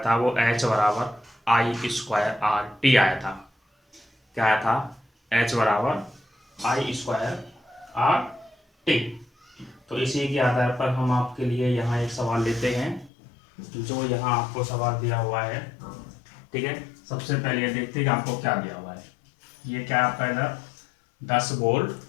था वो H बराबर आई स्क्वायर आर टी आया था। क्या आया था? H बराबर आई स्क्वायर आर टी। तो इसी के आधार पर हम आपके लिए यहाँ एक सवाल लेते हैं, जो यहाँ आपको सवाल दिया हुआ है। ठीक है, सबसे पहले ये देखते हैं कि आपको क्या दिया हुआ है। ये क्या आपका इधर 10 वोल्ट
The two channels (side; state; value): right; drops out; at 13.1 s